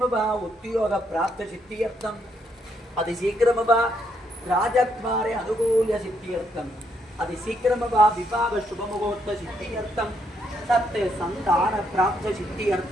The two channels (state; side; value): normal; both; correlation 0.74